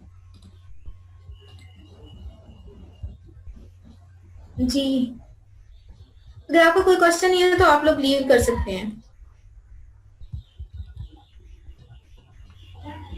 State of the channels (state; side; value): identical; both; correlation 1.00